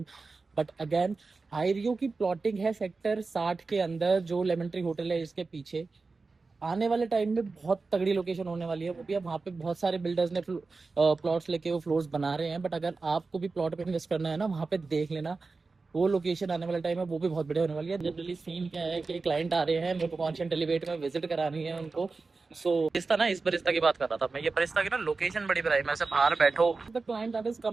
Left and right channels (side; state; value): left; quieter; 4.0 dB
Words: But again Ireo की प्लॉटिंग है सेक्टर 60 के अंदर, जो लेमन ट्री होटल है इसके पीछे। आने वाले टाइम में बहुत तगड़ी लोकेशन होने वाली है वो भी। अब वहाँ पे बहुत सारे बिल्डर्स ने प्लॉट्स लेके वो फ्लोर्स बना रहे हैं, बट अगर आपको भी प्लॉट पे इन्वेस्ट करना है ना, वहाँ पे देख लेना वो लोकेशन आने वाले टाइम में वो भी बहुत बढ़िया होने वाली है। जनरली सीन क्या है कि क्लाइंट आ रहे हैं, मेरे को कॉन्शियंट एलिवेट में विजिट करानी है उनको। सो इस तरह इस बरिस्ता की बात कर रहा था मैं। ये बरिस्ता की ना लोकेशन बड़ी बढ़िया है, मैं से बाहर बैठो। The client that is